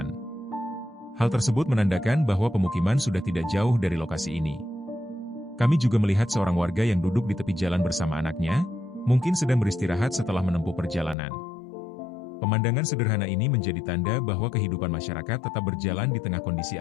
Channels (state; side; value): drops out; right; at 11.2 s